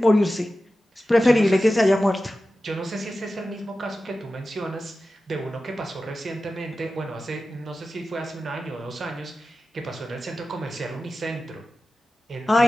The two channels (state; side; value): normal; both; correlation 0.94